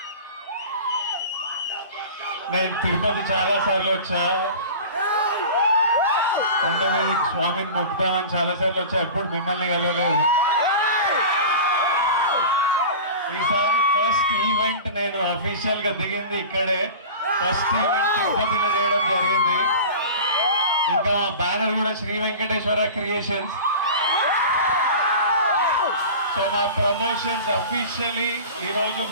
నేను తిరుపతి చాలా సార్లు వచ్చా, కొండ మీద స్వామిని మొక్కుతామని చాలా సార్లు వచ్చా, ఎప్పుడు మిమ్మల్ని కలవలేదు. ఈసారి ఫస్ట్ ఈవెంట్ నేను అఫీషియల్ గా దిగింది ఇక్కడే. ఫస్ట్ ఈవెంట్ తిరుపతిలో చేయడం జరిగింది. ఇంకా బ్యానర్ కూడా శ్రీ వెంకటేశ్వర క్రియేషన్స్. సో మా ప్రమోషన్స్ అఫీషియలీ ఈరోజు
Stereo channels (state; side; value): inverted; both; correlation -0.35